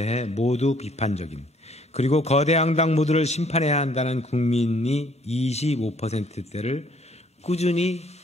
모두 비판적인 그리고 거대 양당 모두를 심판해야 한다는 국민이 25%대를 꾸준히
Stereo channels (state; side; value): normal; both; correlation 0.62